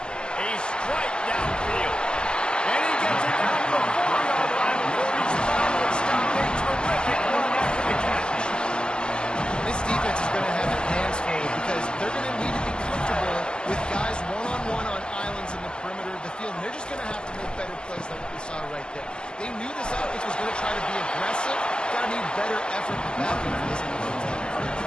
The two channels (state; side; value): late; right; 0.047 ms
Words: strike downfield. And he gets it down to the 40-yard line before he's finally stopped. A terrific run after the catch. This defense is going to have their hands full because they're going to need to be comfortable with guys one-on-one on islands in the perimeter of the field. And they're just going to have to make better plays than what we saw right there. They knew this offense was going to try to be aggressive. Got to need better effort in the back end for this defense.